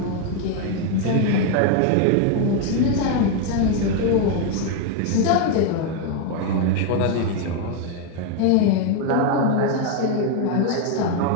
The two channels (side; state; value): both; different; correlation 0.01